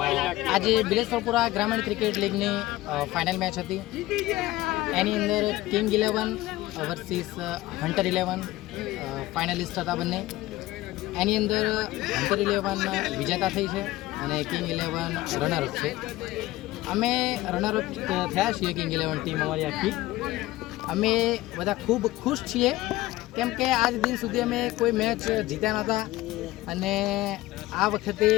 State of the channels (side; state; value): right; quieter; 17.4 dB